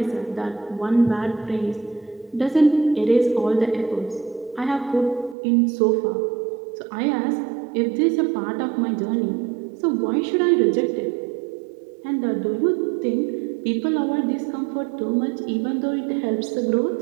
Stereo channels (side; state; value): left; drops out; at 5.4 s